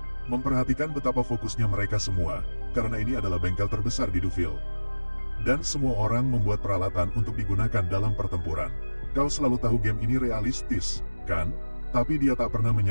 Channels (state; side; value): inverted; both; correlation -1.00